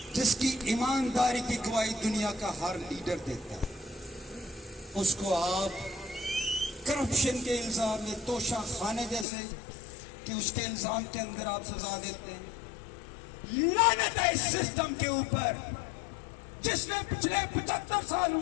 جس کی ایمانداری کی گواہی دنیا کا ہر لیڈر دیتا ہے، اس کو آپ کرپشن کے الزام میں توشہ خانے جیسے کہ اس کے الزام کے اندر آپ سزا دیتے ہیں۔ لعنت ہے اس سسٹم کے اوپر جس نے پچھلے 75 سالوں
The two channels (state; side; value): drops out; right; at 9.2 s